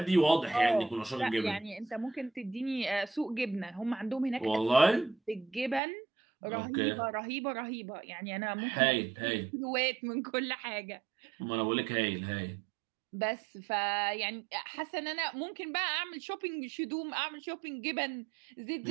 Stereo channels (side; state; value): left; drops out; at 5.8 s